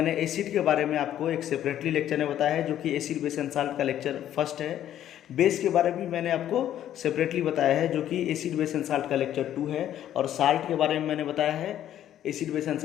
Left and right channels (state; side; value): quieter; right; 11.4 dB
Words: एसिड के बारे में आपको एक सेपरेटली लेक्चर में बताया है, जो कि एसिड बेस एंड साल्ट का लेक्चर फर्स्ट है। बेस के बारे में मैंने आपको सेपरेटली बताया है, जो कि एसिड बेस एंड साल्ट का लेक्चर 2 है। और साल्ट के बारे में मैंने बताया है एसिड बेस एंड